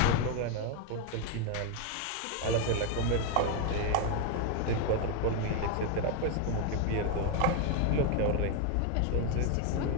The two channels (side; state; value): both; different; correlation 0.01